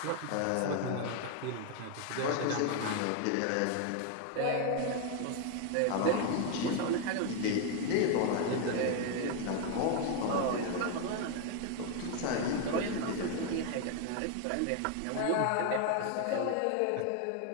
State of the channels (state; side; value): different; both; correlation 0.01